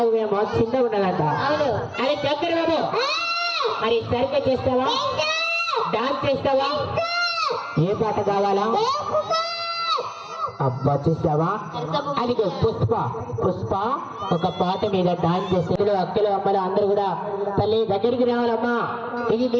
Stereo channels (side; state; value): both; identical; correlation 1.00